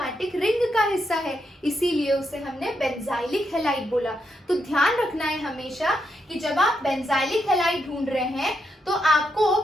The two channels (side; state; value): both; normal; correlation 0.81